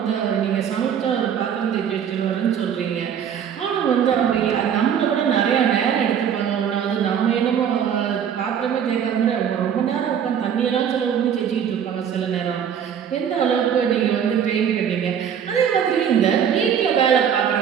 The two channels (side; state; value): left; quieter; 8.4 dB